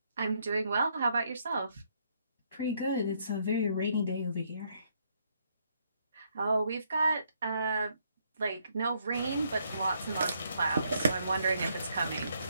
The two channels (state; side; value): inverted; both; correlation -0.72